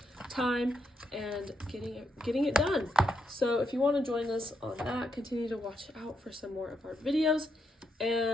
time and getting it done. So if you want to join us on that, continue to watch out for some more of our videos.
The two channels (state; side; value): normal; both; correlation 0.80